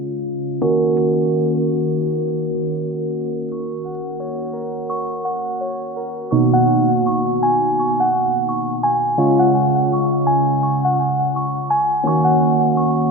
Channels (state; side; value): normal; both; correlation 0.43